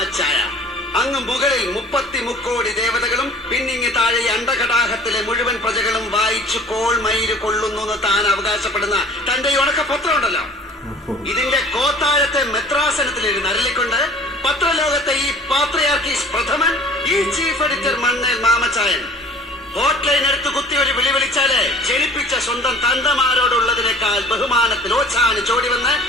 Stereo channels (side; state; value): both; normal; correlation 0.48